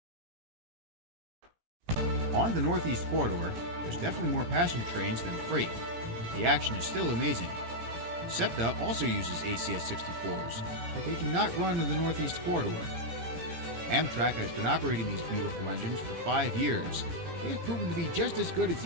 On the Northeast Corridor, there's definitely more passenger trains than freight. The action is still amazing. Septa also uses ACS-64s, but they do not run in the Northeast Corridor. Amtrak has been operating these beautiful engines for 5 years. They have proven to be just as good as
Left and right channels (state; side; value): late; left; 17 ms